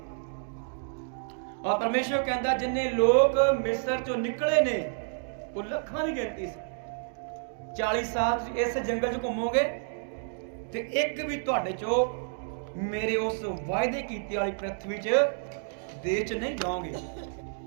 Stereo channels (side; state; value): left; silent; digital silence